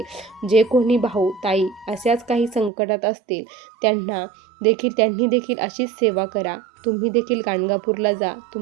जे कोणी भाऊ ताई अशाच काही संकटात असतील त्यांनी देखील अशीच सेवा करा. तुम्ही देखील गाणगापूरला जा,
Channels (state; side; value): drops out; left; at 2.7 s